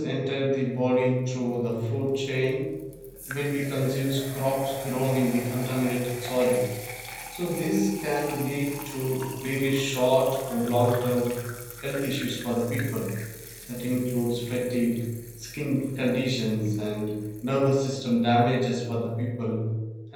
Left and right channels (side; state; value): both; identical; correlation 1.00